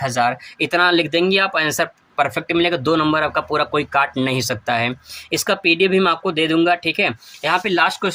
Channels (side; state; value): both; identical; correlation 1.00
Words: इतना लिख देंगे आप, आंसर परफेक्ट मिलेगा। 2 नंबर आपका पूरा कोई काट नहीं सकता है। इसका पीडीएफ भी मैं आपको दे दूंगा, ठीक है। यहाँ पे लास्ट